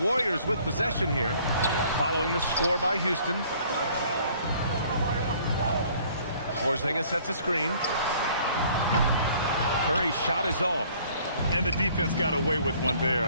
with possession here, following the score by Houston. Porzingis sets a screen. Curry's shot is off. And the defense got away with one there.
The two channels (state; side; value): inverted; both; correlation -0.57